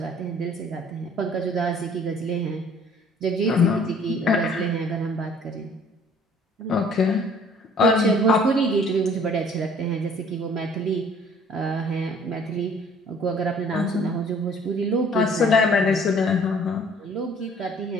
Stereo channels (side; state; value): both; normal; correlation 0.55